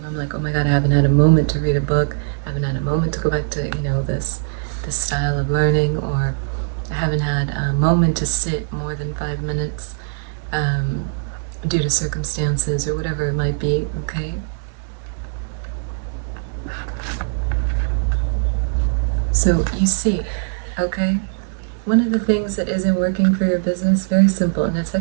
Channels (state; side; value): silent; left; digital silence